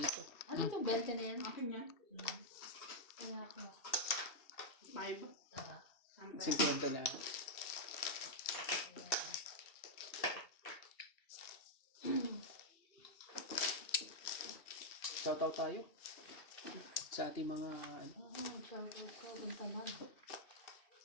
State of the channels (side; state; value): right; late; 2.7 ms